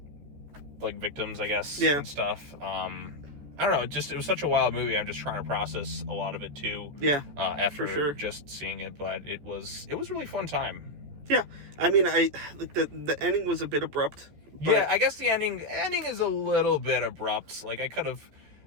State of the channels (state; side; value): late; left; 14 ms